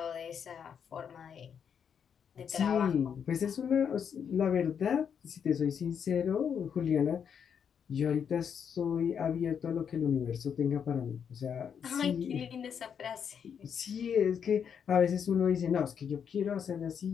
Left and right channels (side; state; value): right; quieter; 7.6 dB